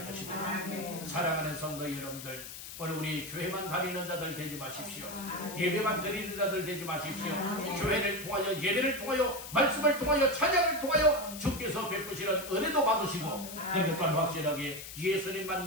것입니다. 사랑하는 성도 여러분들, 오늘 우리 교회만 다니는 자들 되지 마십시오. 예배만 드리는 자들 되지 마십시오. 교회를 통하여, 예배를 통하여, 말씀을 통하여, 찬양을 통하여 주께서 베푸시는 은혜도 받으시고 그리고 또한 확실하게 예수님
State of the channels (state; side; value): noise; left; hiss, 11 dB below the sound